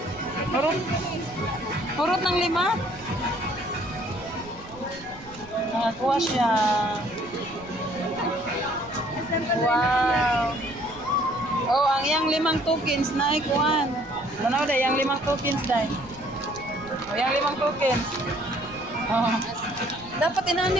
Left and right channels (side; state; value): right; noise; rumble, 20 dB below the sound